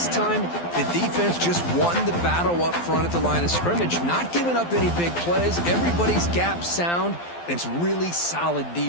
time, the defense just won the battle up front at the line of scrimmage, not giving up any big plays. Everybody's gap sound, and it's really solid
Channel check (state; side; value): late; right; 12 ms